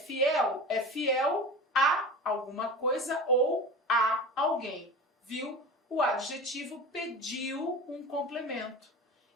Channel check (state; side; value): normal; both; correlation 0.32